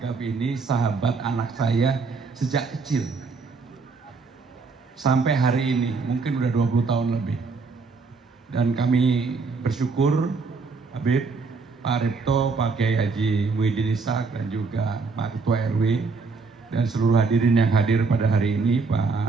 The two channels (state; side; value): quieter; left; 4.4 dB